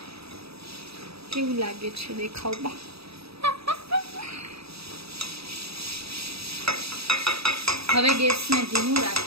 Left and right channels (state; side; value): late; left; 0.77 ms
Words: કેવું લાગે છે દેખાવમાં? હવે ગેસને ધીમું